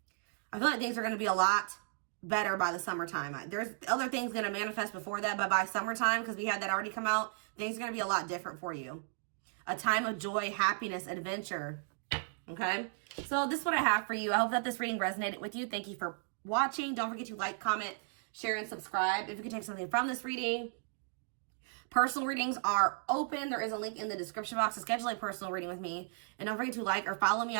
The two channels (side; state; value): left; silent; 54 dB below the other